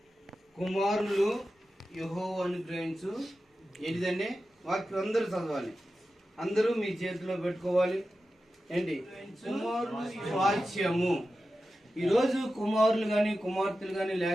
కుమారులు యెహోవా అనుగ్రహించు ఏంటిదండి వాక్యం అందరూ చదవాలి, అందరూ మీ చేతిలో పెట్టుకోవాలి. ఏంటి కుమారులు స్వాస్థ్యము. ఈరోజు కుమారులు కానీ కుమార్తెలు కానీ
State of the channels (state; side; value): normal; both; correlation 0.93